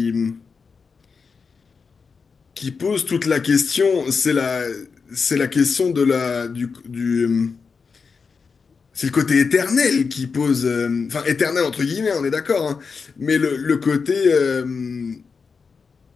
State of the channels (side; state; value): right; quieter; 5.2 dB